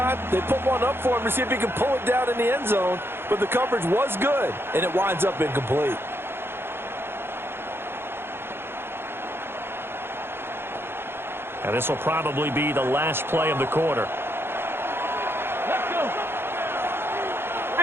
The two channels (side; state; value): left; late; 0.11 ms